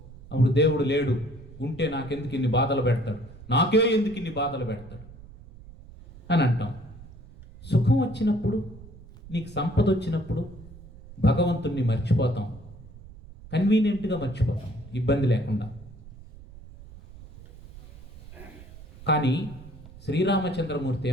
అప్పుడు దేవుడు లేడు, ఉంటే నాకెందుకు ఇన్ని బాధలు పెడతాడు, నాకే ఎందుకు ఇన్ని బాధలు పెడతాడు అని అంటాం. సుఖం వచ్చినప్పుడు, నీకు సంపద వచ్చినప్పుడు భగవంతుణ్ణి మర్చిపోతాం, కన్వీనియంట్గా మర్చిపోతాం, ఇబ్బంది లేకుండా. కానీ శ్రీరామచంద్రమూర్తి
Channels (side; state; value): right; noise; rumble, 18 dB below the sound